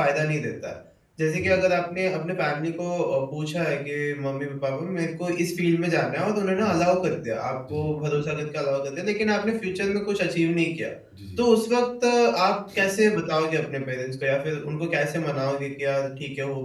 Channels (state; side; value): identical; both; correlation 1.00